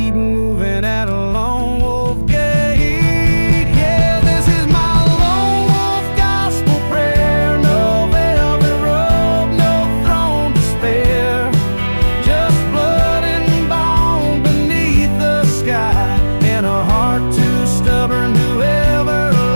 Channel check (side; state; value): both; inverted; correlation -1.00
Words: moving at a lone wolf gait. Yeah, this is my lone wolf gospel prayer. No velvet robe, no throne to spare. Just blood and bone beneath the sky, and a heart too stubborn to ever